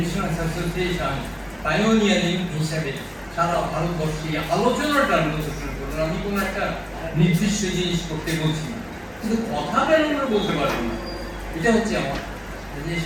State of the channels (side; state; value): both; identical; correlation 1.00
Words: অ্যাসোসিয়েশন পাইওনিয়ারিং হিসাবে সারা ভারতবর্ষে আলোচনাটা শুরু করুন। আমি কোনো একটা নির্দিষ্ট জিনিস করতে বলছি না, কিন্তু কথা কেন আমরা বলতে পারবো না, এটা হচ্ছে আমার যে